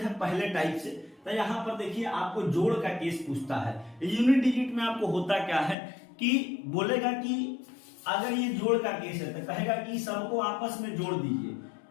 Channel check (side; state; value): right; drops out; at 5.8 s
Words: पहले टाइप से। तो यहाँ पर देखिए आपको जोड़ का केस पूछता है। यूनिट डिजिट में आपको होता क्या है कि बोलेगा कि अगर ये जोड़ का केस है तो कहेगा कि सबको आपस में जोड़ दीजिए।